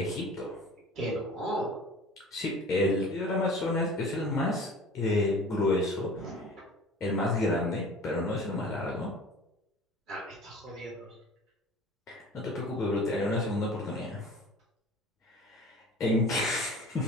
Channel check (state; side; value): normal; both; correlation 0.43